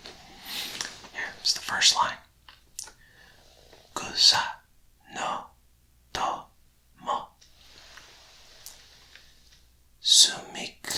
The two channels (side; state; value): both; identical; correlation 1.00